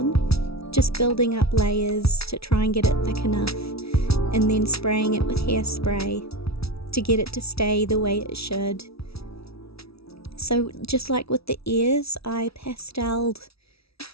just building up layers to try and get it thick enough, and then spraying it with hairspray to get it to stay the way it should. So just like with the ears, I pasteled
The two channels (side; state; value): right; late; 0.76 ms